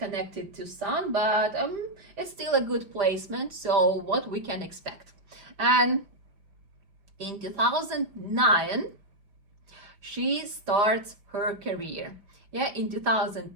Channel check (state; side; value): late; left; 5.1 ms